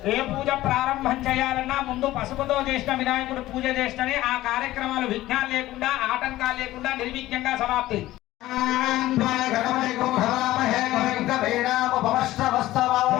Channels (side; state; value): right; quieter; 15.9 dB